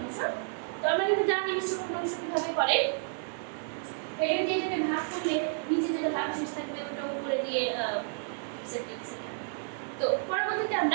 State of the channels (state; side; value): silent; left; 57 dB below the other